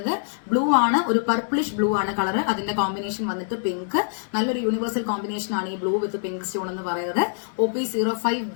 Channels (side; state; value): right; silent; 62 dB below the other